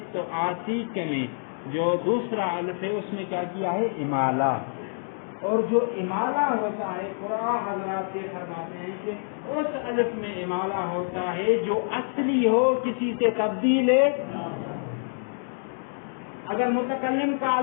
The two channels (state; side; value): silent; right; digital silence